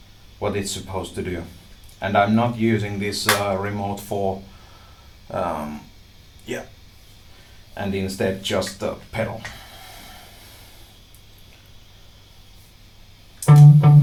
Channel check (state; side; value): identical; both; correlation 1.00